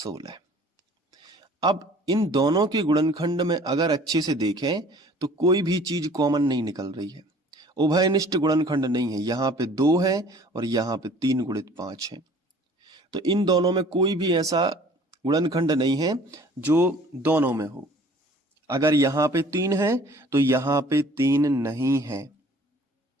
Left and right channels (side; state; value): both; normal; correlation 0.51